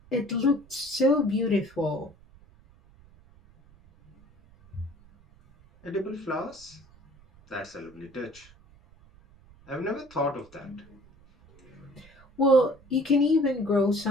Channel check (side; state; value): right; noise; rumble, 26 dB below the sound